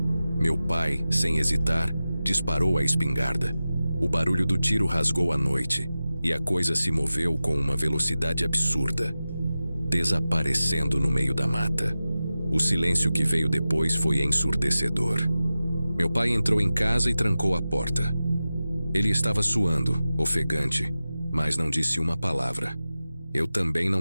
Meu pai, sem hesitar, disparou a espingarda. O barulho do tiro rasgou a noite, e a coisa se moveu com uma velocidade absurda, desaparecendo no meio da mata. O silêncio que veio depois foi ensurdecedor. Meu pai entrou em casa e trancou a porta. Ele estava suando, ofegante, mas não disse uma palavra. Eu também não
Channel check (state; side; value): inverted; both; correlation -0.95